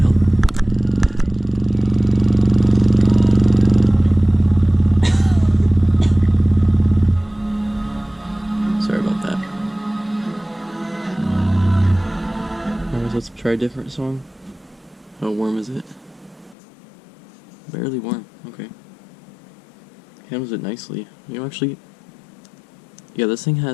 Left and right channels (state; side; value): drops out; right; at 16.6 s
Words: Sorry about that. Alright, let's try a different song. How warm is it? Barely warm, okay. Handles it nicely. You know, actually, yeah, this thing